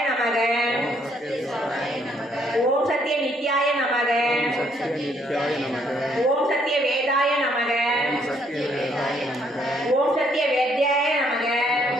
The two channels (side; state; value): both; normal; correlation 0.69